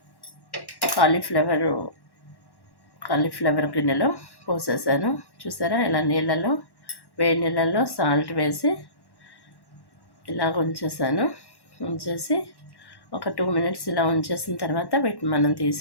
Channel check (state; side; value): late; right; 1.1 ms